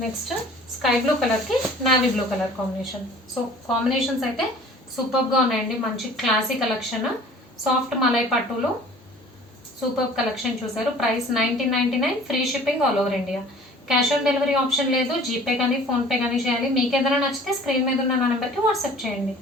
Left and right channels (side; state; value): both; normal; correlation 0.48